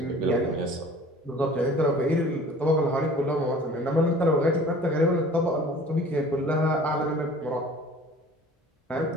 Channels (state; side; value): normal; both; correlation 0.47